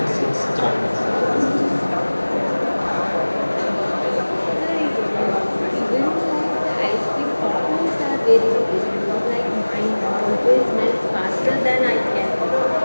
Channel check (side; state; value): both; inverted; correlation -1.00